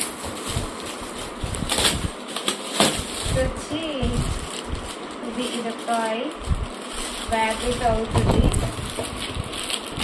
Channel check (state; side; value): identical; both; correlation 1.00